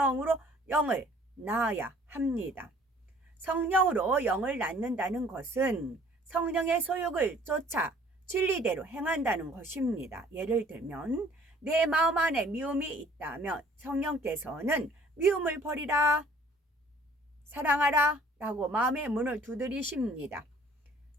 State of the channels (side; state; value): both; normal; correlation 0.55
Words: 영을 낳아야 합니다. 성령으로 영을 낳는다는 것은 성령의 소욕을 쫓아 진리대로 행한다는 것입니다. 예를 들면 내 마음 안에 미움이 있다면 성령께서는 미움을 버리라, 사랑하라 라고 마음의 문을 두드리십니다.